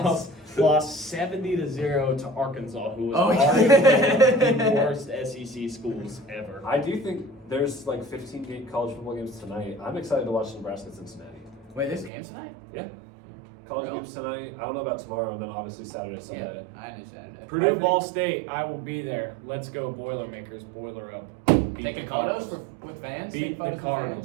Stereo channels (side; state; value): left; drops out; at 12.1 s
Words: Bluff lost 70-0 to Arkansas, who was Oh, yeah. arguably the worst SEC schools ever. I do think there's like 15 college football games tonight. I'm excited to watch Nebraska Cincinnati. Wait, there's games tonight? Yeah. college No. games tonight. I don't know about tomorrow, and then obviously Saturday, Sunday. Yeah, I knew Saturday. Purdue Ball State, I will be there. Let's go Boilermakers, boiler up. Beat Taking the photos Cardinals. with fans? Beat Taking the photos with